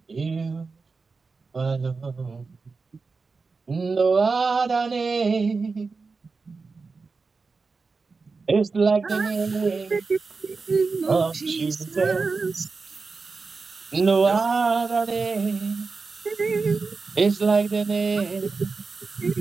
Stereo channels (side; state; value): left; quieter; 4.4 dB